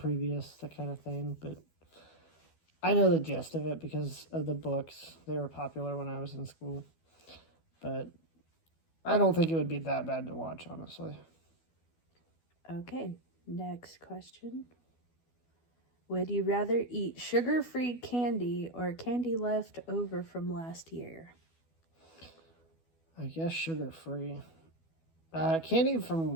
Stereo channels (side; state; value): right; late; 12 ms